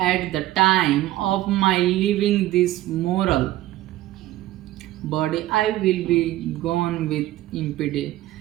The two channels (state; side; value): quieter; left; 15.6 dB